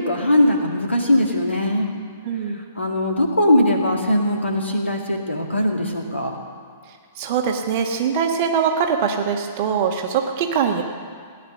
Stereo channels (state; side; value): inverted; both; correlation -0.63